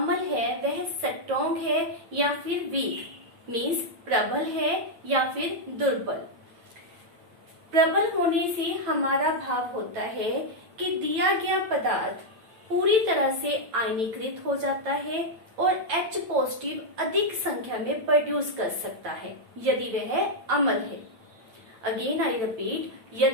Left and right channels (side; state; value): left; late; 9.1 ms